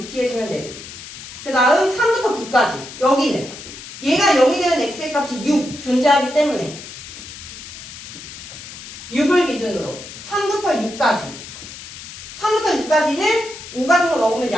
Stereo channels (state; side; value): noise; left; hiss, 13 dB below the sound